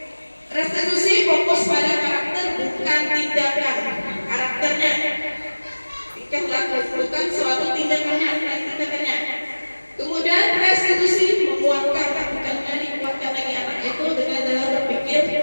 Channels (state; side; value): inverted; both; correlation -1.00